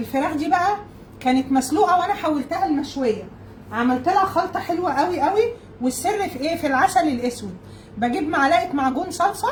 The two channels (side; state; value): both; identical; correlation 1.00